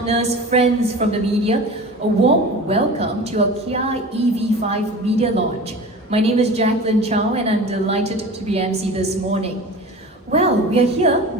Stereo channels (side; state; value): both; normal; correlation 0.36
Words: friends from the media. A warm welcome to our Kia EV5 media launch. My name is Jacqueline Chow and I'm delighted to be MC this morning. Well, we